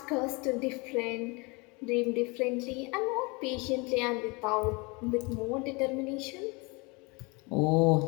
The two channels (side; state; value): right; quieter; 27.9 dB